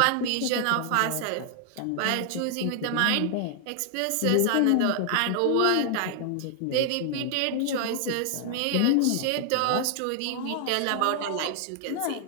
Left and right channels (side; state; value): both; different; correlation 0.00